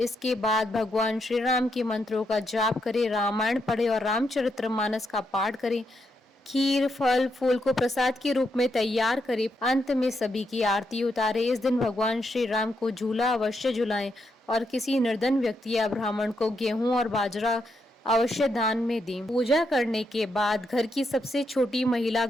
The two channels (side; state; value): both; normal; correlation 0.80